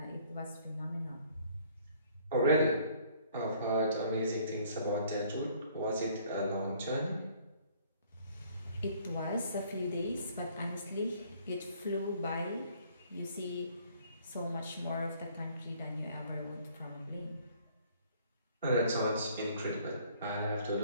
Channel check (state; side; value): inverted; both; correlation -0.58